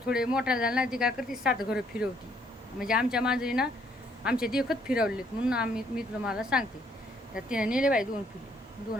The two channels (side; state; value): both; normal; correlation 0.67